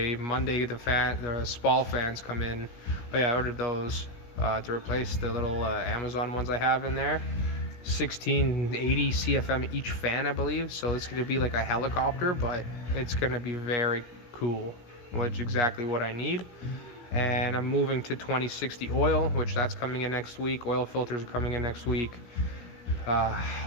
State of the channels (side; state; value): right; late; 17 ms